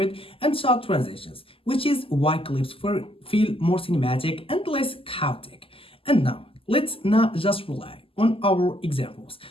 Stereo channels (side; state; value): right; late; 0.26 ms